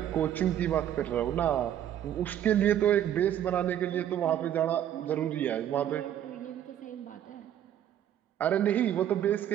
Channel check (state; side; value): quieter; left; 10.7 dB